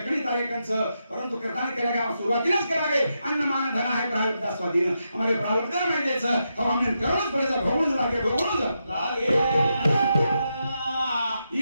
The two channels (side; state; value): both; inverted; correlation -0.85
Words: तारेकंच परंतु करता केलेगा सुरुवातीलाच करावे अन्न मान धन आहे प्रारब्ध स्वाधीन हमारे प्रारब्ध नाही द्यायचं हमने कर्मच पडायचं भोगून लागे